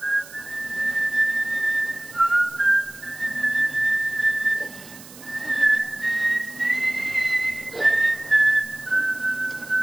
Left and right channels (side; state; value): right; noise; hiss, 18 dB below the sound